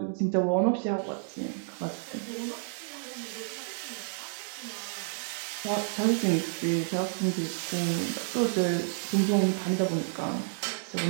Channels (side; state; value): left; silent; digital silence